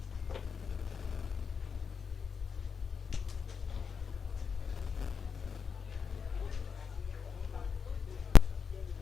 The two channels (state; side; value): quieter; right; 6.1 dB